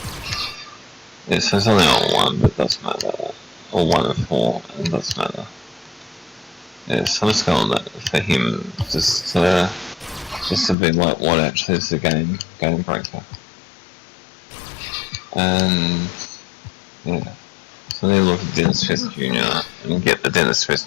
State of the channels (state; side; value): drops out; right; at 10.8 s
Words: Yeah, so it's only on 1, but it doesn't matter, or 1 of 4, and it doesn't matter. Yeah, so I'm just going on that for him, just to be like what actually is the game breaker. And yeah, so I need to look at Dennis Smith Jr. and get the Dennis